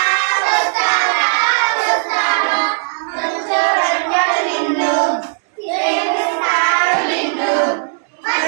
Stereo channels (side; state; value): left; silent; 64 dB below the other